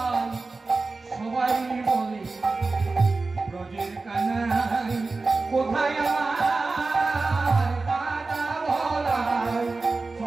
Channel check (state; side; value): quieter; left; 3.7 dB